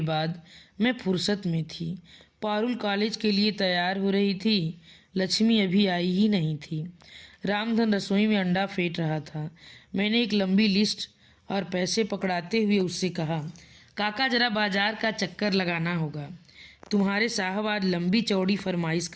बाद मैं फुर्सत में थी। पारुल कॉलेज के लिए तैयार हो रही थी। लक्ष्मी अभी आई ही नहीं थी। रामधन रसोई में अंडा फेंट रहा था। मैंने एक लंबी लिस्ट और पैसे पकड़ाते हुए उससे कहा, काका जरा बाजार का चक्कर लगाना होगा, तुम्हारे साहब आज लंबी चौड़ी फरमाइश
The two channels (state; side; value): identical; both; correlation 1.00